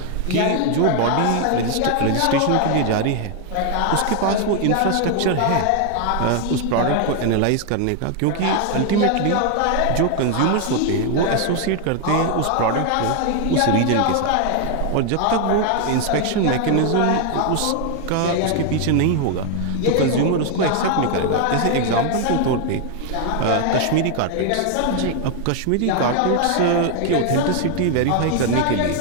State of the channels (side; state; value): both; different; correlation 0.00